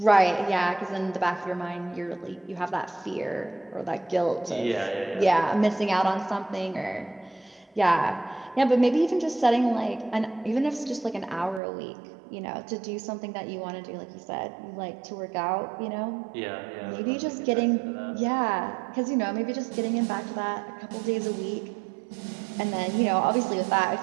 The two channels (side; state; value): left; drops out; at 11.6 s